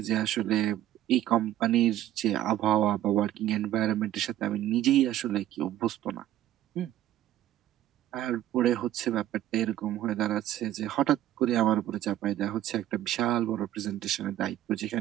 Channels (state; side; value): quieter; left; 12.8 dB